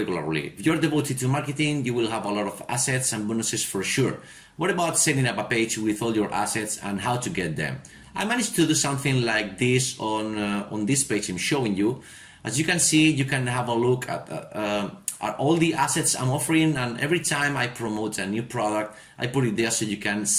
If you're devoted to marketing, you will have a lot of assets and bonuses for sure. What about setting up a page with all your assets and how to get them? I managed to do something like this on this page I'm showing you. As you can see, you can have a look at all the assets I'm offering, and every time I promote a new product, I put it there so you can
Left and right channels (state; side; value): identical; both; correlation 1.00